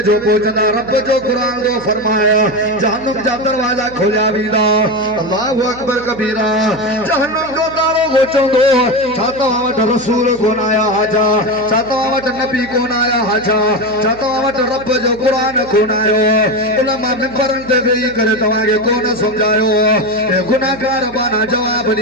जो पहुंचदा रब जो कुरान को फरमाया जहन्नम जा दरवाजा खोलिया वींदा अल्लाहु अकबर कबीरा जहन्नम जो दारो गोचंदो चाहता वट रसूल कोन आया हाजा चाहता वट नबी कोन आया हाजा चाहता वट रब जो कुरान कोन आयो उलमा मिंबरन ते वेही करे तवा के कोन समझायो ए गुनाहगार बाना जवाब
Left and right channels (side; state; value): right; noise; hum, 19 dB below the sound